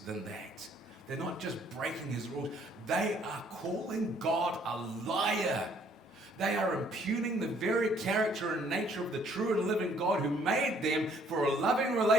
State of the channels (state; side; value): normal; both; correlation 0.63